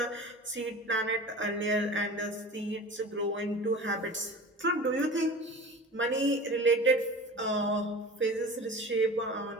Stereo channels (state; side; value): normal; both; correlation 0.36